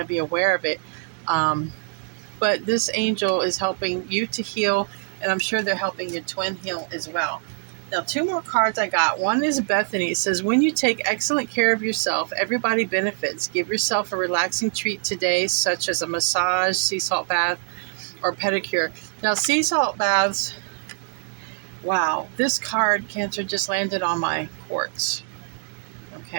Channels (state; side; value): silent; left; 63 dB below the other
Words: be aware of it. But this angel is helping you to heal, and I'm sure they're helping your twin heal as well. Now, 2 more cards I got. One is Bethany. It says, when you take excellent care of yourself, everybody benefits. Give yourself a relaxing treat today, such as a massage, sea salt bath, or pedicure. Now, sea salt baths, wow, this card, Cancer, just landed on my quartz.